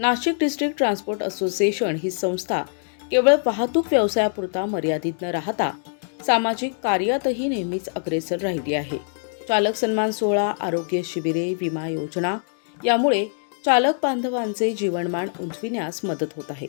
डिस्ट्रिक्ट ट्रान्सपोर्ट असोसिएशन ही संस्था केवळ वाहतूक व्यवसायापुरता मर्यादित न राहता सामाजिक कार्यातही नेहमीच अग्रेसर राहिली आहे. चालक सन्मान सोहळा, आरोग्य शिबिरे, विमा योजना यामुळे चालक बांधवांचे जीवनमान उंचविण्यास मदत होत आहे.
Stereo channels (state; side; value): silent; right; digital silence